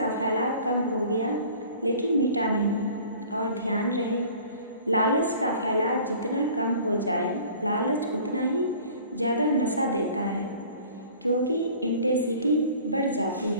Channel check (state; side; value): inverted; both; correlation -0.48